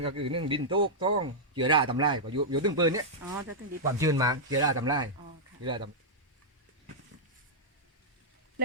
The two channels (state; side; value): normal; both; correlation -0.09